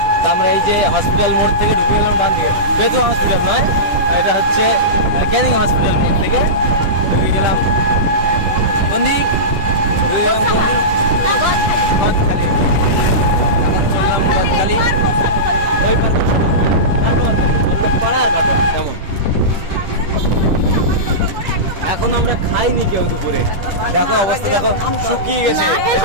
আমরা এই যে হসপিটাল মোড় থেকে ঢুকে গেলাম ডান দিকে, বেতুয়া হসপিটাল নয়, এটা হচ্ছে ক্যানিং হসপিটাল মোড় থেকে ঢুকে গেলাম গন্ডি, গদখালি। এখন চললাম গদখালি, ওই পার পাড়ার কথা কেমন। এখন আমরা খাইনি কেউ দুপুরে, দেখো অবস্থা, দেখো শুকিয়ে গেছে,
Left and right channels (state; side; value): late; left; 10 ms